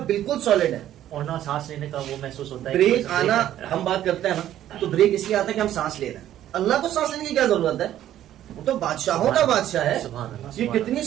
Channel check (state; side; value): quieter; left; 12.1 dB